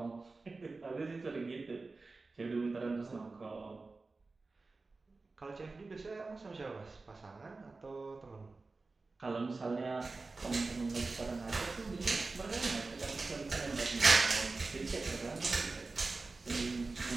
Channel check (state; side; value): quieter; left; 3.7 dB